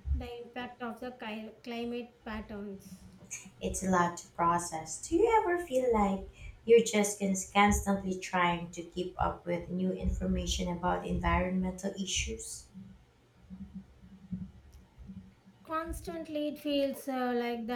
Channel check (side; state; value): both; identical; correlation 1.00